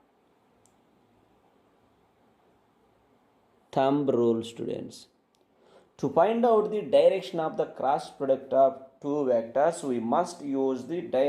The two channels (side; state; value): both; identical; correlation 1.00